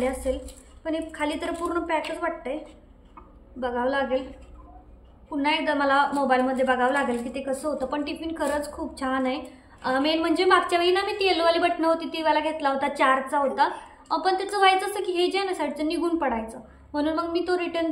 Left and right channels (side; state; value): both; identical; correlation 1.00